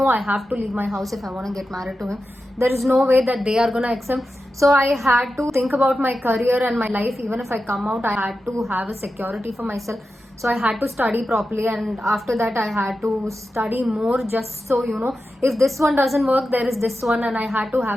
I have to leave my house if I want to get married to him. There is no way that they are gonna accept. So I had to think about my career and my life. Even if I come out, I had to have a security for myself. So I had to study properly, and after that I had to study more, just so if this one doesn't work, there is this one, and I had to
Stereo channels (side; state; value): both; normal; correlation 0.91